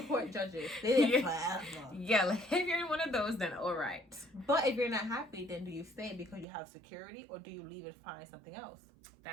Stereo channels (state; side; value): drops out; left; at 6.5 s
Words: Court judges, they forever. Yeah, like if you're in one of those, then all right. But if you're not happy, then do you stay because you have security, or do you leave and find something else?